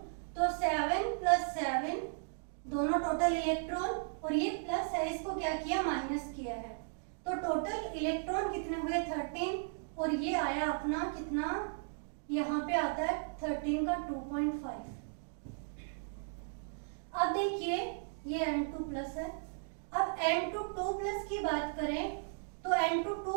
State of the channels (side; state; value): left; silent; digital silence